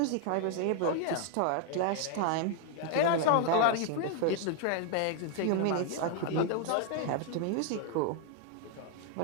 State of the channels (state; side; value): different; both; correlation 0.00